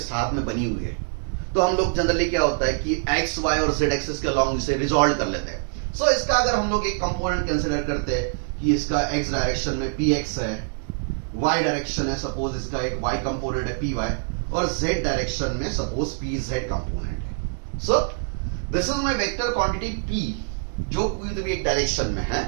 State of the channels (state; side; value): silent; left; 62 dB below the other